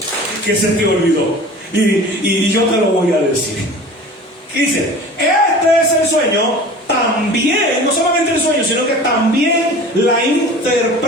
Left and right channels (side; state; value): both; normal; correlation 0.40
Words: que se te olvidó. Y yo te lo voy a decir. Dice, este es el sueño, también, no solamente el sueño, sino que también la